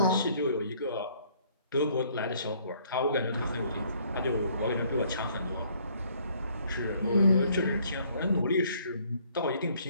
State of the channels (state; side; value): inverted; both; correlation -0.63